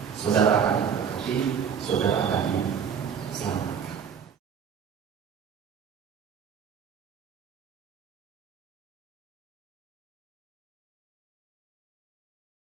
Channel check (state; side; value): quieter; left; 7.4 dB